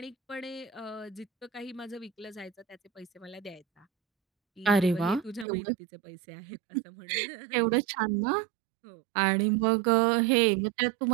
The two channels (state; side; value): drops out; left; at 5.5 s